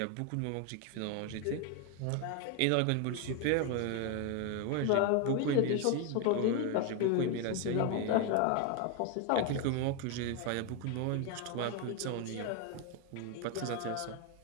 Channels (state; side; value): different; both; correlation 0.01